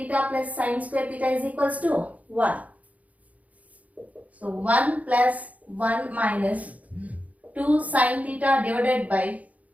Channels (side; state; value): left; late; 0.071 ms